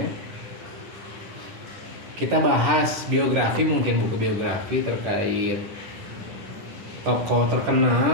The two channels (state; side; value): late; left; 9.8 ms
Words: ya. Kita bahas biografi, mungkin buku biografi terkait tokoh